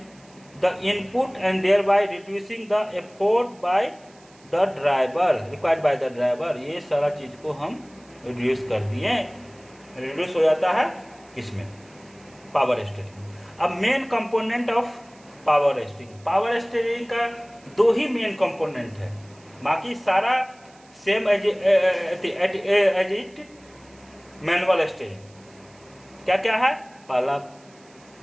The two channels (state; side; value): noise; right; hiss, 28 dB below the sound